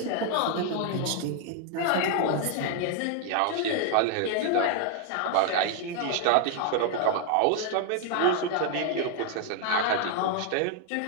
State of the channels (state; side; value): different; both; correlation 0.00